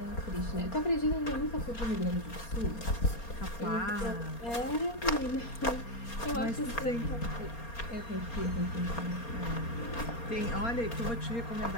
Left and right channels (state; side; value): late; right; 4.3 ms